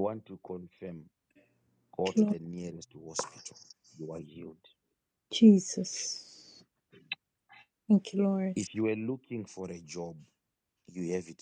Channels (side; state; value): both; identical; correlation 1.00